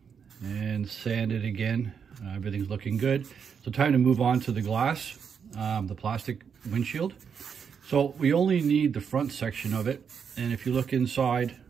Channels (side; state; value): left; quieter; 6.9 dB